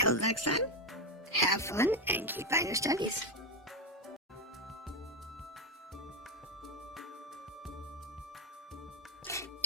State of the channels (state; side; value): normal; both; correlation 0.10